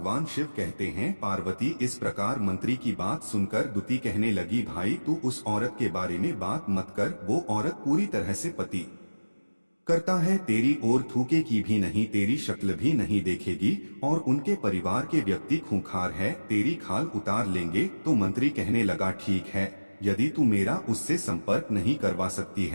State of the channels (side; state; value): both; inverted; correlation -1.00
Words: शिव कहते हैं पार्वती इस प्रकार मंत्री की बात सुनकर दुती कहने लगी भाई तू उस औरत के बारे में बात मत कर, वो औरत पूरी तरह से पति करता है, तेरी ओर थूके की भी नहीं, तेरी शक्ल भी नहीं देखेगी और उनके परिवार के व्यक्ति खूंखार है, तेरी खाल उतार लेंगे। तो मंत्री कहने लगा ठीक है, यदि तू मेरा उससे संपर्क नहीं करवा सकती